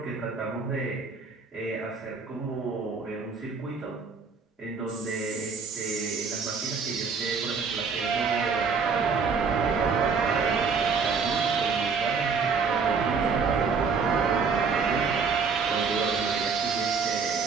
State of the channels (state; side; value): quieter; left; 5.4 dB